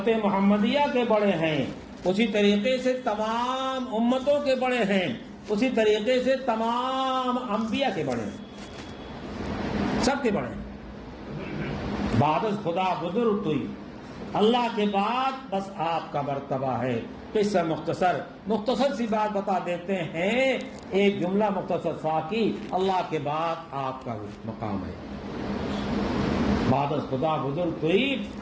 محمدیہ کے بڑے ہیں اسی طریقے سے تمام امتوں کے بڑے ہیں، اسی طریقے سے تمام انبیاء کے بڑے ہیں، سب کے بڑے ہیں. بعد از خدا بزرگ توئی، اللہ کے بعد بس آپ کا مرتبہ ہے. قصہ مختصر سی بات بتا دیتے ہیں، ایک جملہ مختصر سا کی، اللہ کے بعد آپ کا مقام ہے. بعد از خدا بزرگ توئی،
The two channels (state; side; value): identical; both; correlation 1.00